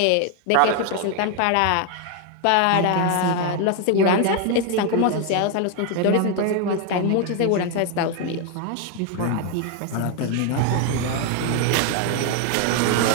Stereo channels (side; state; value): both; different; correlation 0.01